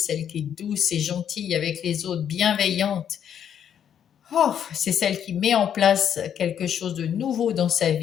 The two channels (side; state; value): right; quieter; 9.0 dB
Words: qui est douce et gentille avec les autres, bienveillante. Oh, c'est celle qui met en place quelque chose de nouveau dans sa